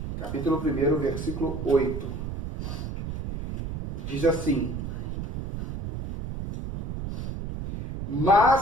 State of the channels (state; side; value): noise; right; rumble, 6 dB below the sound